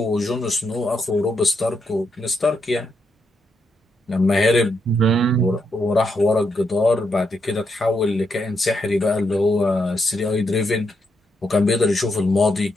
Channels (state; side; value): normal; both; correlation 0.80